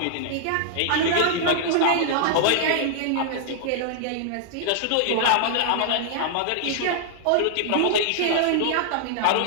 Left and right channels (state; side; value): different; both; correlation -0.01